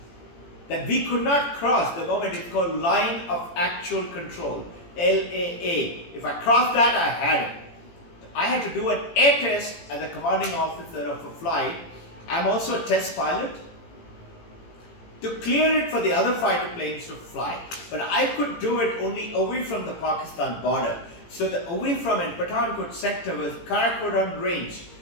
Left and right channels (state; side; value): late; right; 18 ms